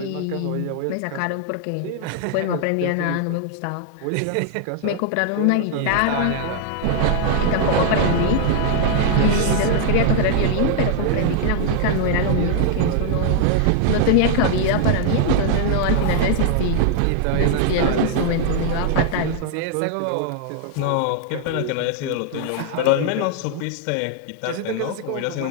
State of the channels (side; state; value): both; different; correlation 0.00